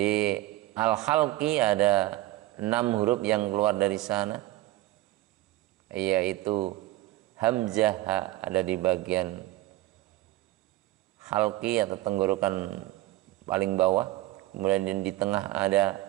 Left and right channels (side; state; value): left; quieter; 16.8 dB